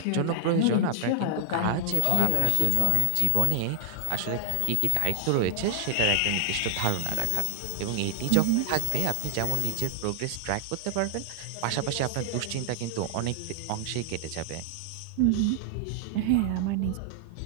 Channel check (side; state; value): both; different; correlation 0.00